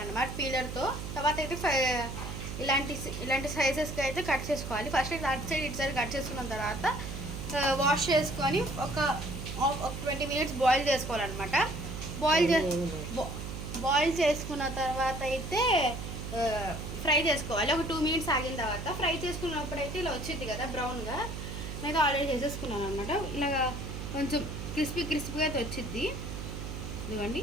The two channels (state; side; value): noise; right; hum, 7 dB below the sound